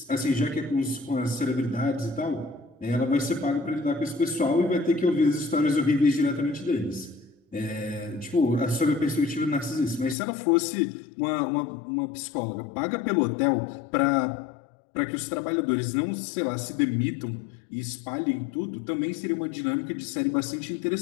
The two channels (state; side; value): drops out; right; at 10.2 s